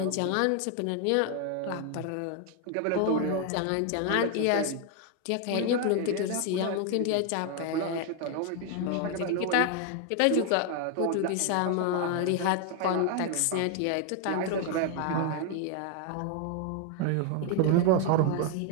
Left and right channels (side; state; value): both; different; correlation 0.01